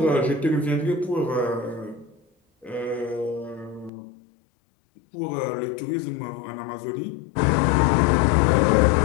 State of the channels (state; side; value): drops out; right; at 3.9 s